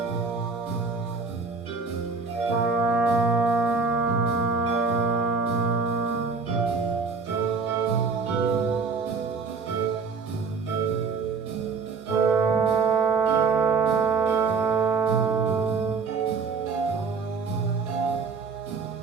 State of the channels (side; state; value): left; quieter; 4.9 dB